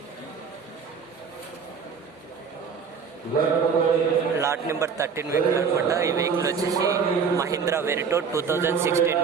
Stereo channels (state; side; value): quieter; left; 6.2 dB